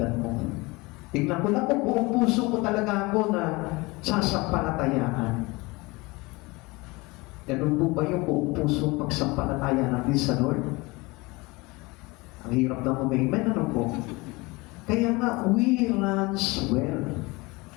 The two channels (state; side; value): quieter; right; 23.9 dB